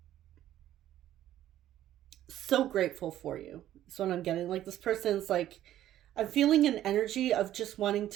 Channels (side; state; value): left; quieter; 12.6 dB